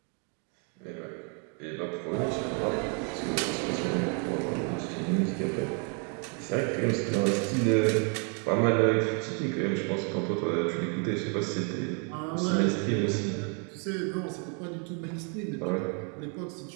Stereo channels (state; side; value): quieter; left; 39.0 dB